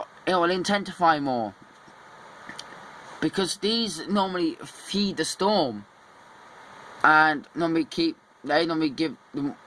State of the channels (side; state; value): both; identical; correlation 1.00